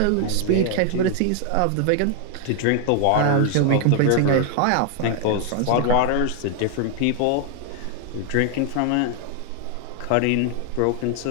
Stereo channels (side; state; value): both; different; correlation 0.00